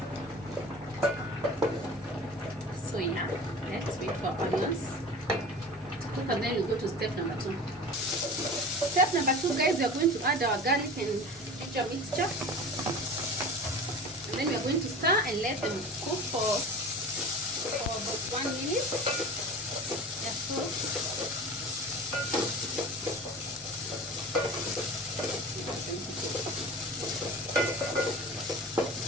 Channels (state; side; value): normal; both; correlation 0.36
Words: So yeah, let's wait for our onions to cook, and then we go to step number 2. Step number 2, guys, we are going to add our garlic and ginger mixture. And then we are going to stir and let them cook for about 1 minute. Yes, so.